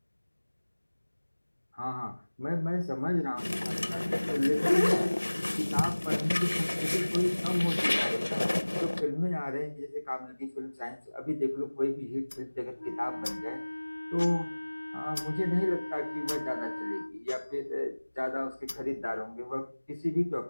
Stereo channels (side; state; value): both; inverted; correlation -1.00